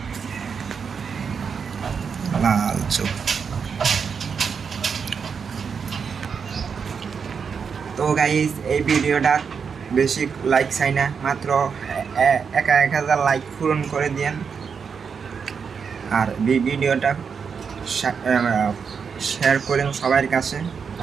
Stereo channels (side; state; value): left; quieter; 6.2 dB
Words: লাল চোখ। তো গাইস, এই ভিডিওটা বেশি লাইক চাই না, মাত্র 1000 লাইক পূরণ করে দিন। আর ভিডিওটা শেয়ার করেন সবার কাছে।